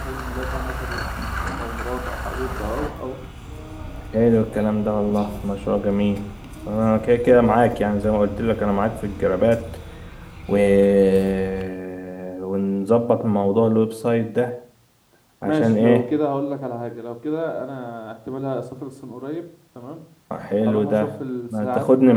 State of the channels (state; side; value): identical; both; correlation 1.00